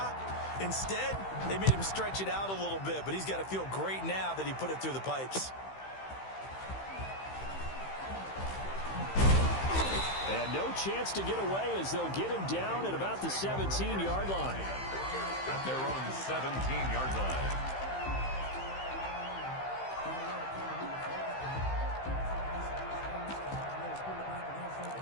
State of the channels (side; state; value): right; late; 15 ms